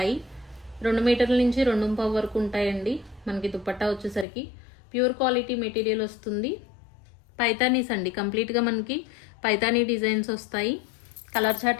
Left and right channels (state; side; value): drops out; right; at 4.2 s